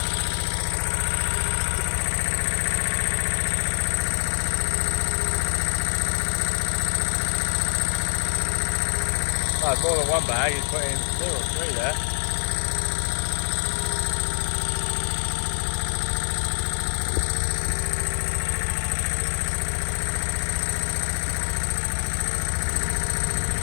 Oh, more than one bag, he's put in 2 or 3 there.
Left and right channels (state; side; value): silent; right; 61 dB below the other